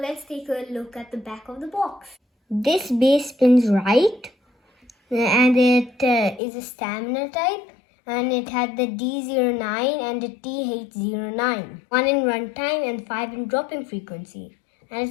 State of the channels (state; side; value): drops out; right; at 6.4 s